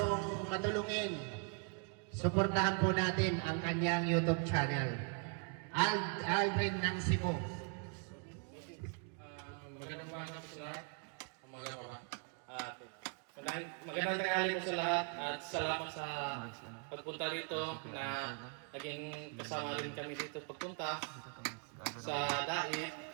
matulungin. Suportahan po natin ang kanyang YouTube channel. Aldrin ng Cebu. Magandang umaga po sa lahat. Magandang tanghali po sa lahat at salamat sa pagpunta rito na naging kasama rin kami dito pagpunta sa Dait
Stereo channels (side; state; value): left; quieter; 39.0 dB